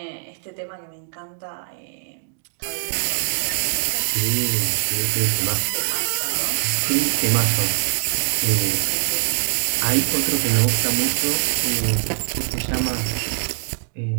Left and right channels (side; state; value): left; silent; digital silence